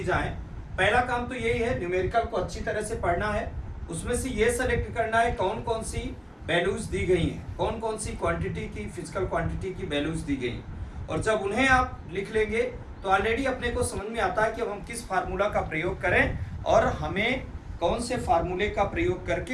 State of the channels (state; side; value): identical; both; correlation 1.00